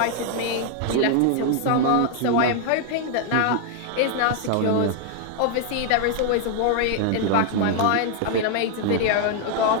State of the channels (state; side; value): different; both; correlation 0.00